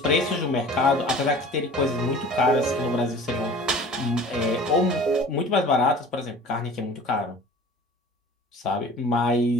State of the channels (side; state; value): both; normal; correlation 0.44